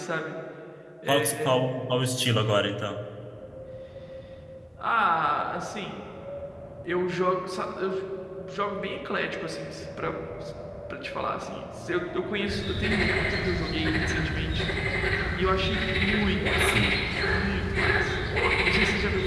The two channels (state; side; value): identical; both; correlation 1.00